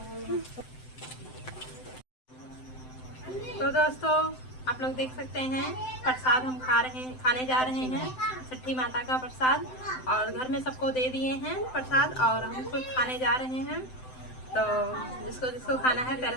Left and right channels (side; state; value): right; late; 7.8 ms